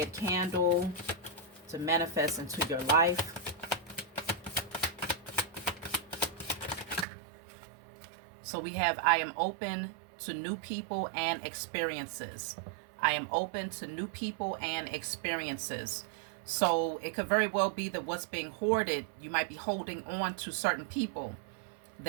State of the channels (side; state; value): left; drops out; at 7.1 s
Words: candle to manifest into your life? So we have, I am open to new people and experiences. I am open to new people and experiences. So it could very well be that what's being hoarded, you might be holding on to certain people